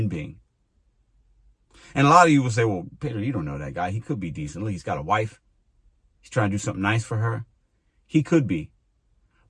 being. And a lot of you will say, well, Peter, you don't know that guy. He could be decent. Look, he's got a wife. He's trying to do something nice for her. He could be.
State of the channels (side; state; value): both; identical; correlation 1.00